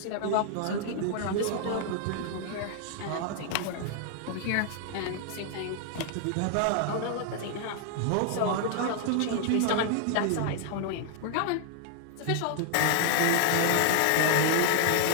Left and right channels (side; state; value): both; different; correlation 0.00